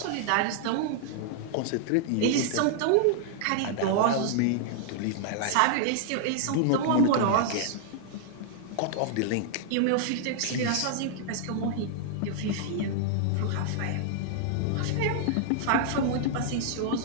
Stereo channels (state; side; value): different; both; correlation -0.01